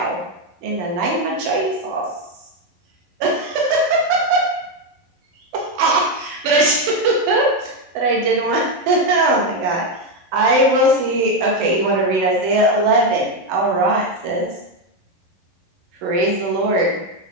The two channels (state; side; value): late; left; 11 ms